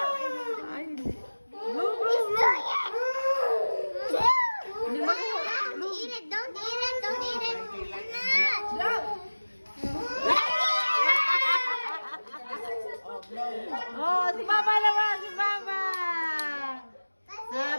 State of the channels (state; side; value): inverted; both; correlation -1.00